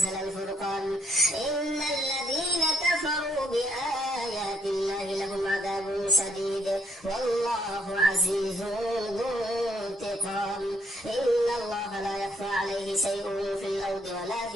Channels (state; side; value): normal; both; correlation 0.72